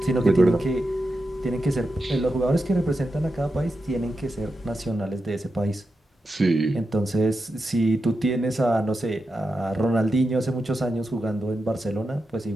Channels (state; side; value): normal; both; correlation 0.89